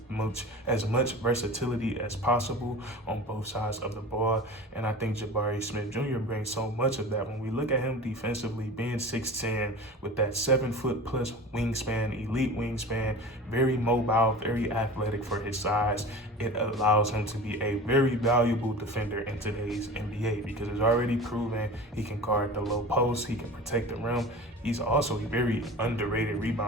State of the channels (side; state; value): both; normal; correlation 0.35